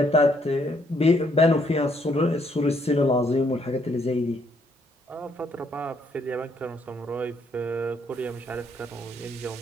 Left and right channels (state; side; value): normal; both; correlation 0.70